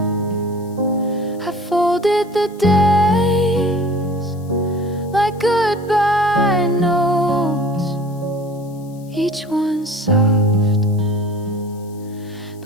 I folded the days like goodbye notes, each one soft,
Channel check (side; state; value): left; noise; hiss, 27 dB below the sound